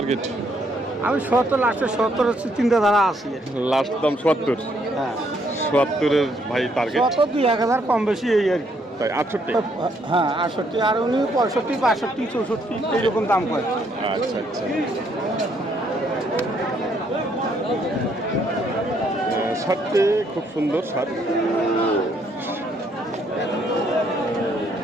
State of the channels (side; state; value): both; normal; correlation 0.70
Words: আমি 70, লাস্টে 70 হচ্ছে চিন্তাধারা আছে। লাস্ট দাম 70। হ্যাঁ, 70-এর ভাই টার্গেট। 70 2-1000 কম বেশি এই আর কি। তাই 68? হ্যাঁ, 68। আর উনি 65, 62, 64 এইরকম দাম কয়। আচ্ছা আচ্ছা। সারটি খুব সুন্দর সার।